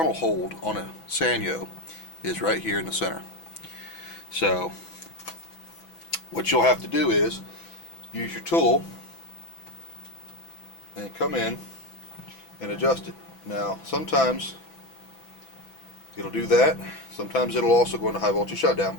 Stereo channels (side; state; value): right; late; 6.0 ms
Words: hold on a Sanyo is right here in the center. So what you'll have to do is use your tool and come in and adjust it. Now sometimes it'll do that, sometimes it'll also go into high voltage shutdown,